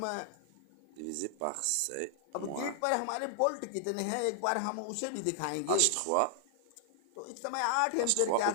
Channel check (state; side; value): different; both; correlation -0.01